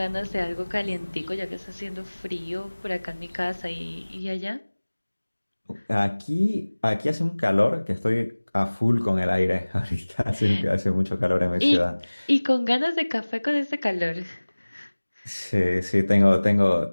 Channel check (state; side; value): inverted; both; correlation -1.00